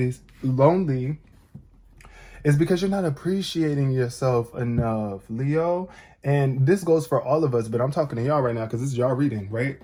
it's because you're not appreciating yourself enough, Leo. And this goes for all of us, but I'm talking to y'all right now because this is y'all reading, right?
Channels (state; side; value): identical; both; correlation 1.00